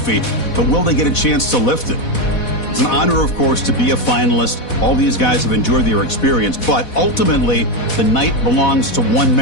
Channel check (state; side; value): late; right; 4.1 ms